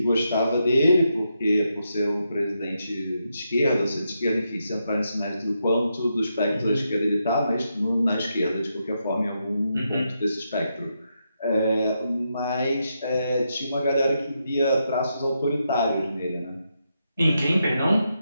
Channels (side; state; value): both; inverted; correlation -0.83